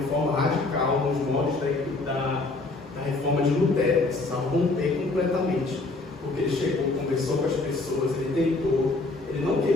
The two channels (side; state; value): right; quieter; 3.3 dB